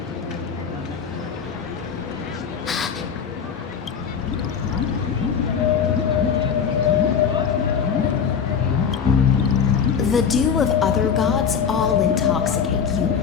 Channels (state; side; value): quieter; right; 6.9 dB